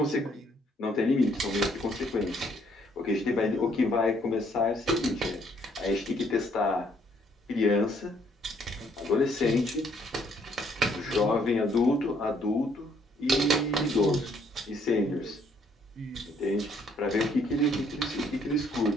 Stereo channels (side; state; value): both; normal; correlation 0.66